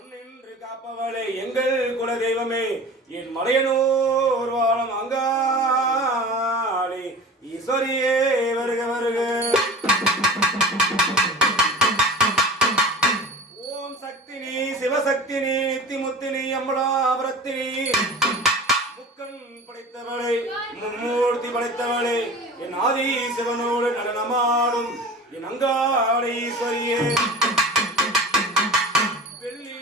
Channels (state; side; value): normal; both; correlation 0.37